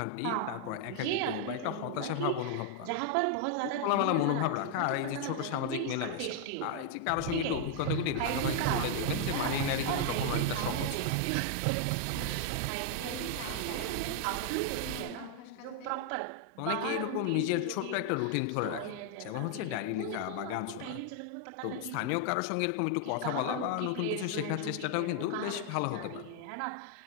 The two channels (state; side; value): different; both; correlation 0.00